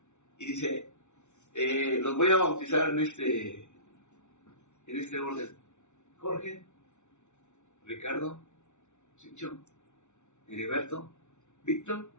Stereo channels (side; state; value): right; late; 0.83 ms